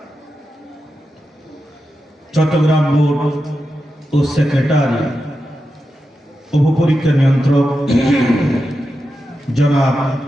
চট্টগ্রাম বোর্ড ও সেক্রেটারি, উপপরীক্ষা নিয়ন্ত্রক জনাব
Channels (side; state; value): both; normal; correlation 0.89